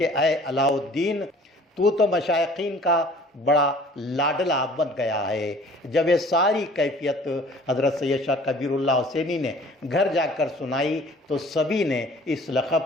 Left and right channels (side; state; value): both; normal; correlation 0.50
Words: اے علاء الدین، تو مشائخین کا بڑا لاڈلا بن گیا ہے۔ جب یہ ساری کیفیت حضرت سید شاہ کبیر اللہ حسینی نے گھر جا کر سنائی تو سبھی نے اس